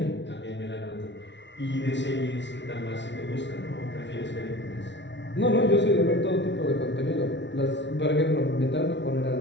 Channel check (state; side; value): late; right; 0.52 ms